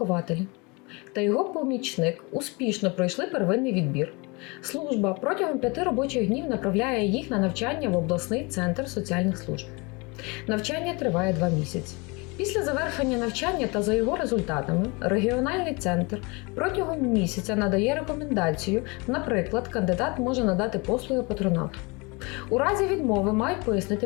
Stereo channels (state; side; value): quieter; right; 28.0 dB